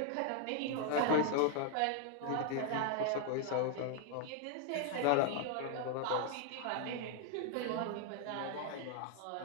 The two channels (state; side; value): different; both; correlation 0.00